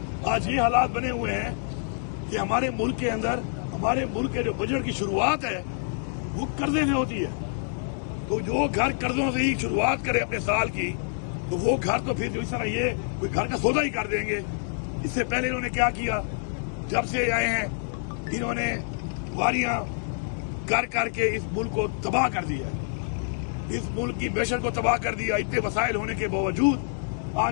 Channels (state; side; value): silent; right; digital silence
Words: آج یہ حالات بنے ہوئے ہیں کہ ہمارے ملک کے اندر، ہمارے ملک کے جو بجٹ کی شروعات ہے وہ قرضے سے ہوتی ہے. تو جو گھر قرضوں سے ہی شروعات کرے اپنے سال کی، تو وہ گھر تو پھر جو اس طرح یہ کوئی گھر کا سودا ہی کر دیں گے. اس سے پہلے انہوں نے کیا کیا، جب سے آئے ہیں انہوں نے واریاں کر کے اس ملک کو تباہ کر دیا ہے، اس ملک کی معیشت کو تباہ کر دیا. اتنے وسائل ہونے کے باوجود